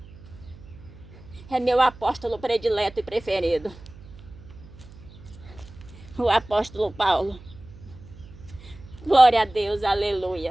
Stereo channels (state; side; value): noise; right; hum, 19 dB below the sound